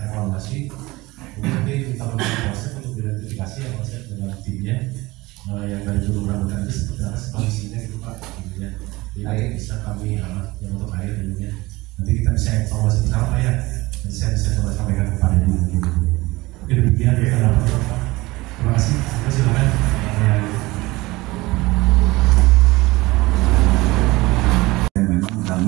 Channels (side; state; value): left; quieter; 21.0 dB